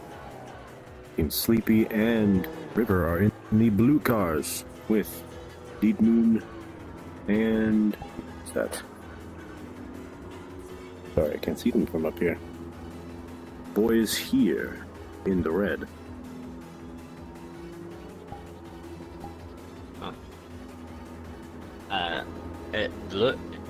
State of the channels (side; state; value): both; identical; correlation 1.00